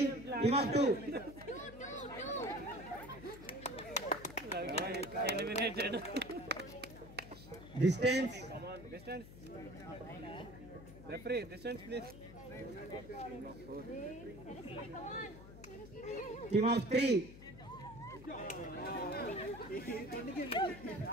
Team of 2. Eliminated. Distance. Come on, distance. Referee, distance please. Team of 3.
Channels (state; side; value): noise; left; hum, 15 dB below the sound